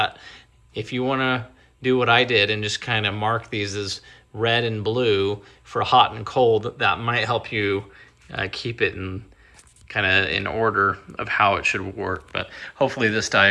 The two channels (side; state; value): both; identical; correlation 1.00